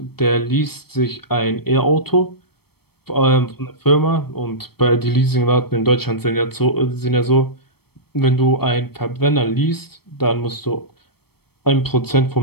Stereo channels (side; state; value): right; late; 0.96 ms